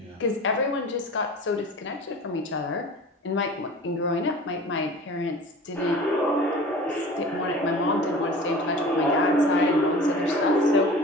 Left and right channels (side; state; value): both; normal; correlation 0.40